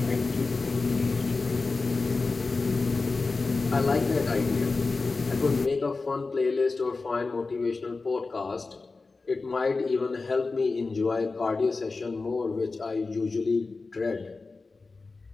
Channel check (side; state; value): right; quieter; 3.9 dB